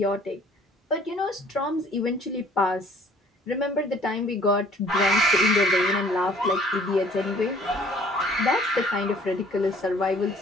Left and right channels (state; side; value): normal; both; correlation 0.56